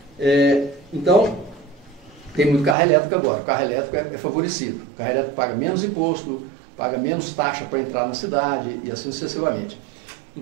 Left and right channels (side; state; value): left; drops out; at 2.8 s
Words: Então, tem muito carro elétrico agora. O carro elétrico é favorecido. O carro elétrico paga menos imposto, paga menos taxa para entrar na cidade e assim sucessivamente.